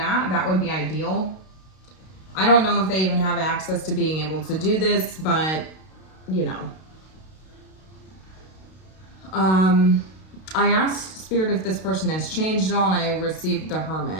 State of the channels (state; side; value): late; right; 32 ms